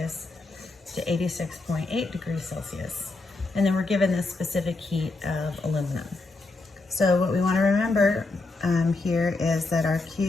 to 86.8 degrees Celsius. And then we're given the specific heat of aluminum. So what we want to remember here is that our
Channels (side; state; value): right; quieter; 3.4 dB